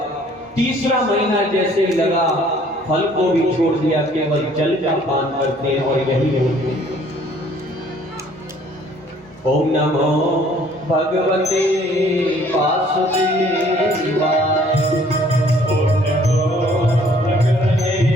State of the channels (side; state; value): both; normal; correlation 0.58